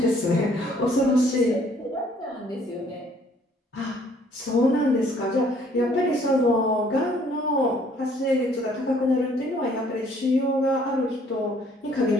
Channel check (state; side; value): normal; both; correlation 0.61